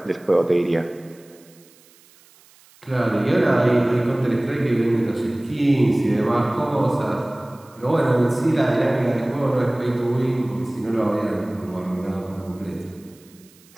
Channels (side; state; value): right; noise; hiss, 28 dB below the sound